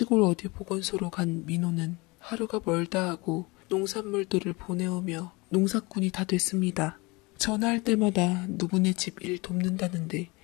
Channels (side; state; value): right; quieter; 25.2 dB